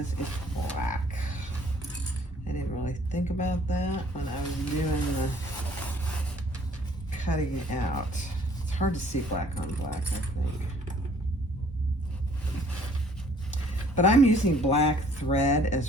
it's black. I didn't really think about that when I was doing the cutting it out. It's hard to see black on black, I think. But I'm using black thread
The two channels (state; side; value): normal; both; correlation 0.58